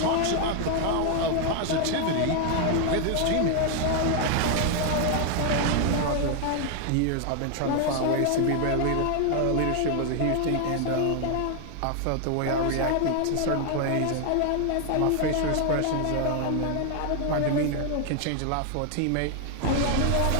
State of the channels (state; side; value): different; both; correlation 0.00